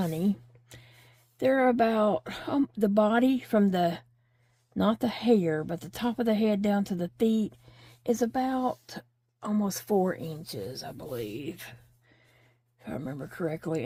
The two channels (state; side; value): identical; both; correlation 1.00